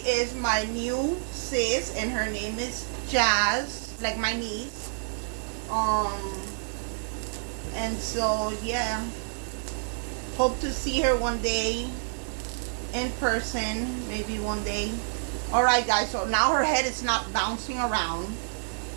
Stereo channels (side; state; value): left; silent; digital silence